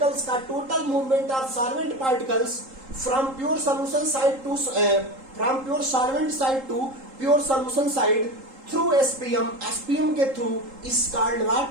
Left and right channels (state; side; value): late; left; 3.8 ms